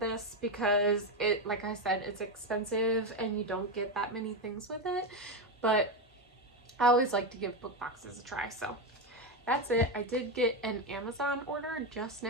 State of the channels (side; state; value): both; normal; correlation 0.11